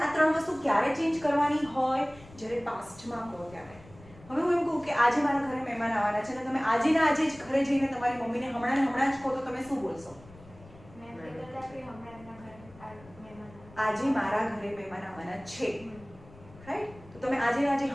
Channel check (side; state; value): left; noise; rumble, 22 dB below the sound